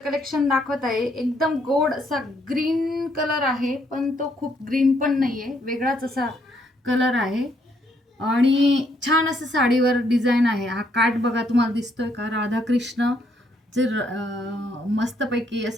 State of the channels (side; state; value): both; normal; correlation 0.72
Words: Collection दाखवत आहे. एकदम गोड असा ग्रीन कलर आहे, पण तो खूप ग्रीन पण नाहीये, वेगळाच असा कलर आहे आणि छान असं साडीवर डिझाईन आहे. हा काठ बघा तुम्हाला दिसतोय का, राधाकृष्ण जे मस्तपैकी